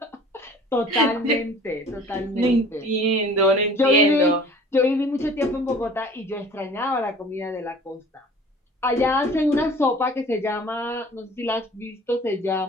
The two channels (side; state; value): both; normal; correlation 0.47